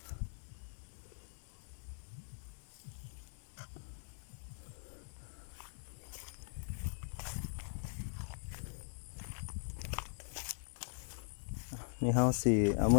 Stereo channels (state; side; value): silent; right; digital silence